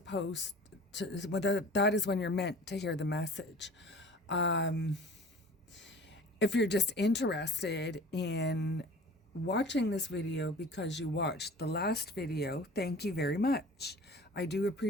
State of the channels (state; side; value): normal; both; correlation 0.43